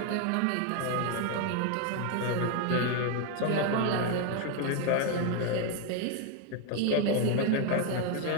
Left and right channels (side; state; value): both; different; correlation 0.01